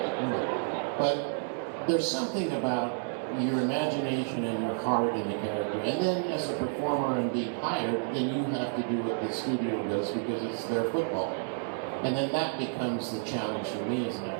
But there's something about your imagination and your heart in the character, and then as a performer and being hired, then you have to do what the studio does because it's their football. And then that becomes the challenge for me as an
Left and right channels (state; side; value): silent; left; digital silence